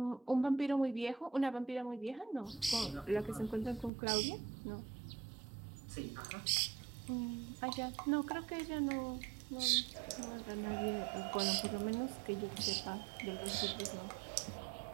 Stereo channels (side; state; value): left; drops out; at 3.9 s